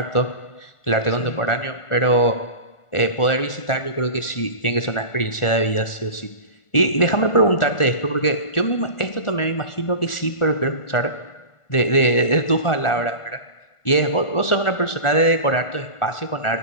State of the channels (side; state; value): right; late; 1.4 ms